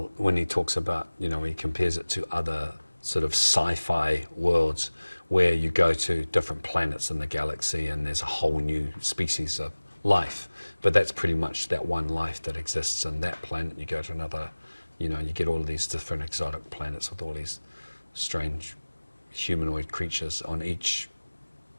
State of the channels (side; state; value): both; inverted; correlation -1.00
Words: when he talks about, you know, he compares it to other sort of sci-fi worlds where you go to different planets in the galaxy and there's a whole new species of life. But that's pretty much that one life that exists on that planet. You go to another, you know, you get all of these different exotic planets with all these strange humanoid creatures on each